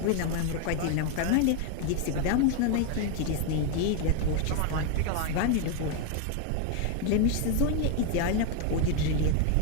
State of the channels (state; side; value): different; both; correlation 0.01